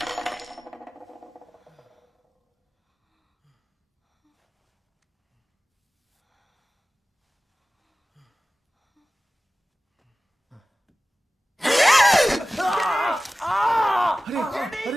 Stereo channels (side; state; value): both; normal; correlation 0.96